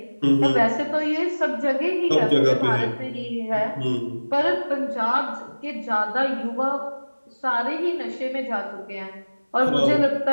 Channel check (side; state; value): both; inverted; correlation -1.00